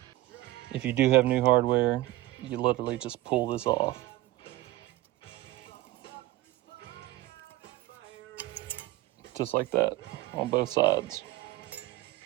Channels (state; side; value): quieter; left; 17.1 dB